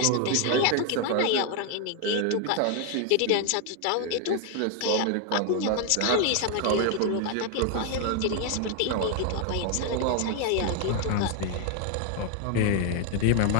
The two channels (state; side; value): different; both; correlation 0.01